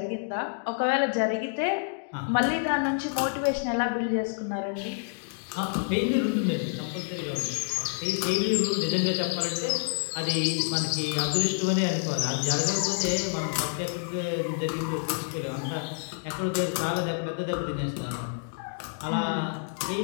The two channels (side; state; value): right; silent; digital silence